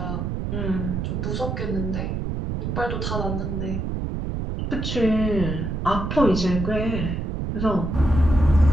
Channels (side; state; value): right; noise; rumble, 3 dB below the sound